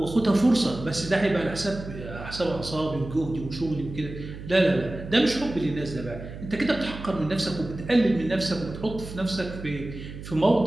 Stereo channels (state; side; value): noise; right; hum, 11 dB below the sound